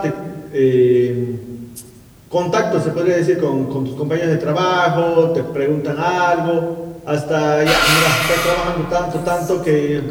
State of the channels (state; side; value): identical; both; correlation 1.00